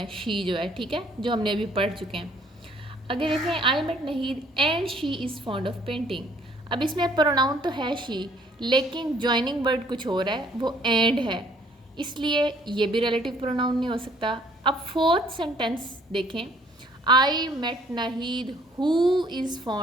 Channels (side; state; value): both; normal; correlation 0.60